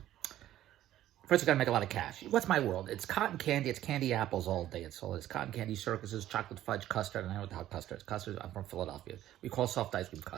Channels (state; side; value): quieter; left; 13.1 dB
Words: First, we got to make a lot of cash. What's my world? It's cotton candy. It's candy apples all day. It's cotton candy circuses, chocolate fudge, custard. And I know what the hell custard is. Custard, I'm from Philadelphia. We call soft ice cream